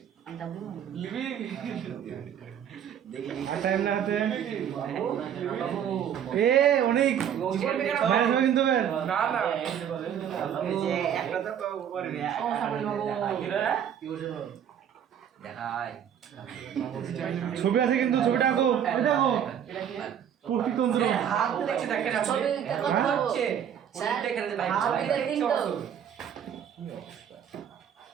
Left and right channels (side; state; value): left; quieter; 9.1 dB